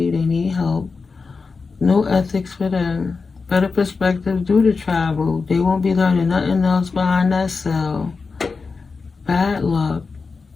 They need help. No ethics for them. Better perspective due to travel. They won't be learning nothing else behind that cell. Bad luck.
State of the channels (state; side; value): quieter; right; 4.6 dB